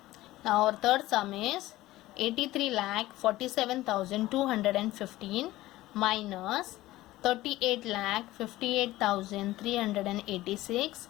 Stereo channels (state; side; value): quieter; right; 16.9 dB